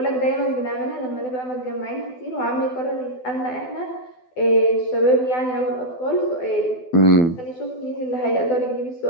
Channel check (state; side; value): late; right; 12 ms